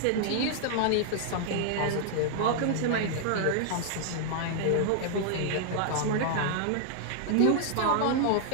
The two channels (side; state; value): both; different; correlation -0.01